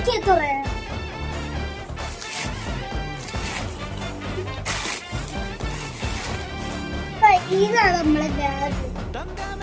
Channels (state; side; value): identical; both; correlation 1.00